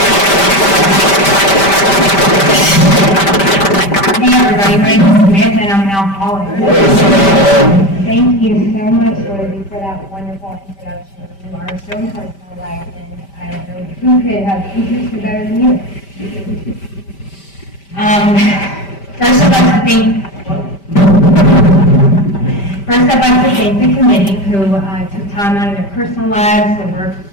Hey everybody, my name is Samantha and I'm an alcoholic. Thank you so much, Rosie, for that wonderful introduction. You are so important in my life, and I don't know who could have introduced me better than you. First I'd like to thank the committee who took time out of their personal lives to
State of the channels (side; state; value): right; late; 5.1 ms